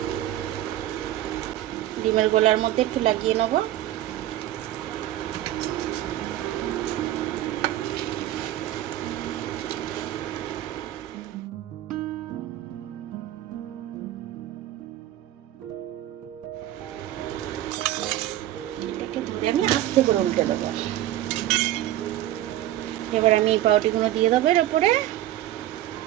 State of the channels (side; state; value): left; quieter; 13.7 dB